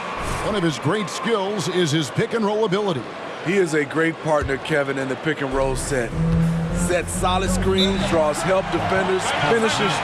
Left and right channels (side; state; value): both; identical; correlation 1.00